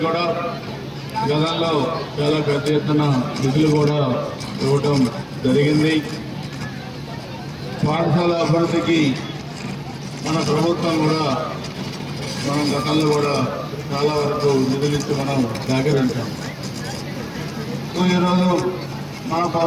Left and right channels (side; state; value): both; identical; correlation 1.00